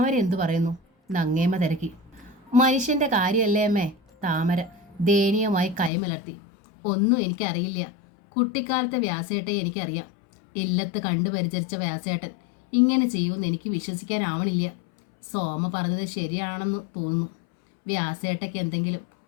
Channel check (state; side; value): drops out; right; at 5.9 s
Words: എന്തു പറയുന്നു? നങ്ങേമ്മ തിരക്കി. മനുഷ്യൻ്റെ കാര്യമല്ലേ അമ്മേ? താമര ദയനീയമായി കൈമലർത്തി. ഒന്നും എനിക്കറിയില്ല. കുട്ടിക്കാലത്തെ വ്യാസേട്ടയെ എനിക്കറിയാം. ഇല്ലത്ത് കണ്ടു പരിചരിച്ച വ്യാസേട്ടൻ ഇങ്ങനെ ചെയ്യുമെന്ന് എനിക്ക് വിശ്വസിക്കാനാവണില്ല. സോമ പറഞ്ഞത് ശരിയാണെന്ന് തോന്നുന്നു. വ്യാസേട്ടയ്ക്ക് എന്തെങ്കിലും